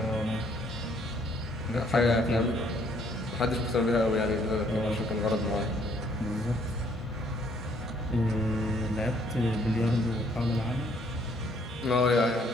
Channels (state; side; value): normal; both; correlation 0.65